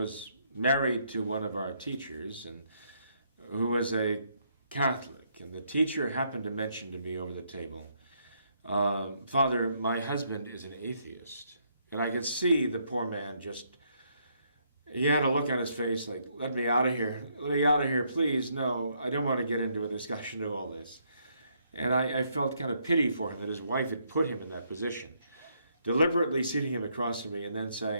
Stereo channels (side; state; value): both; inverted; correlation -0.73